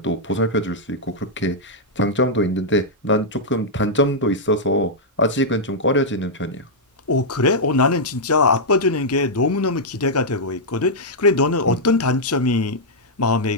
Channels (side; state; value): both; normal; correlation -0.06